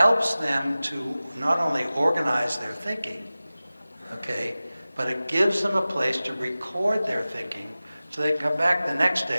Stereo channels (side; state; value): both; inverted; correlation -0.97